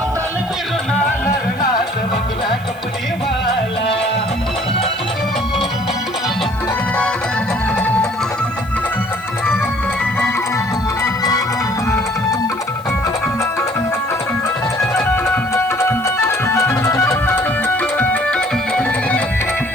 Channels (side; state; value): left; noise; hiss, 26 dB below the sound